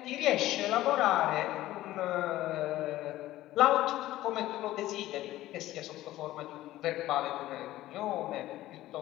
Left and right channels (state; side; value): quieter; right; 15.4 dB